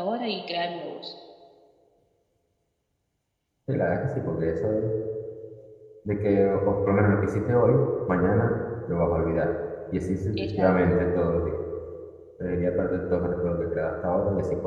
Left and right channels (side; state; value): both; identical; correlation 1.00